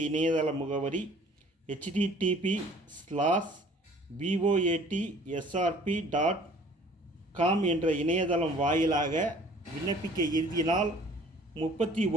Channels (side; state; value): both; normal; correlation 0.53